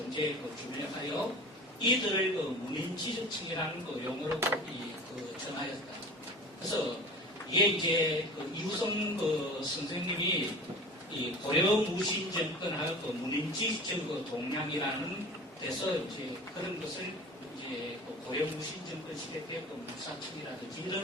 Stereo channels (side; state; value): both; normal; correlation 0.38